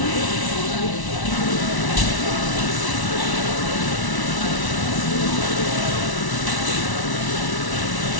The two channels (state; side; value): late; right; 1.1 ms